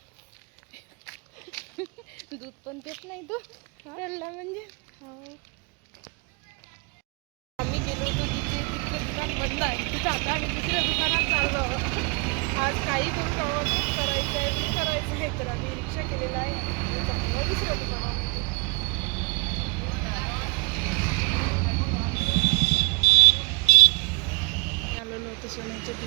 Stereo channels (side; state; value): left; quieter; 31.8 dB